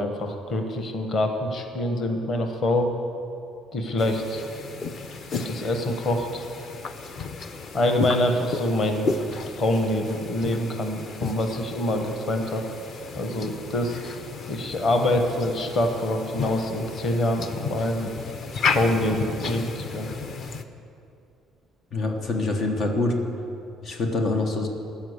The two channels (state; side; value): normal; both; correlation 0.66